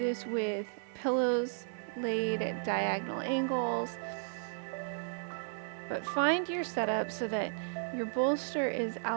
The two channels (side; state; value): left; silent; digital silence